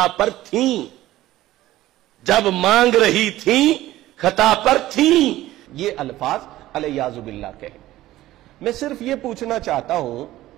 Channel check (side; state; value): left; quieter; 15.5 dB